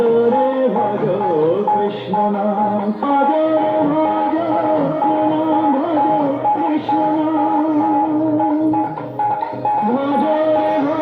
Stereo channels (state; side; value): identical; both; correlation 1.00